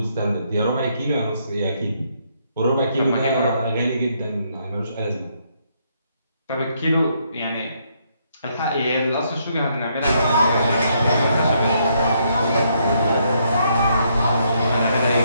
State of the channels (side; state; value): both; inverted; correlation -0.73